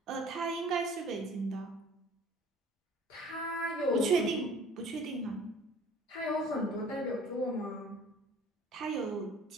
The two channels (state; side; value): normal; both; correlation 0.49